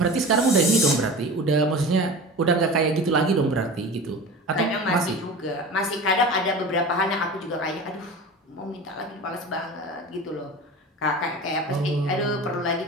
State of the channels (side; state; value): both; normal; correlation 0.34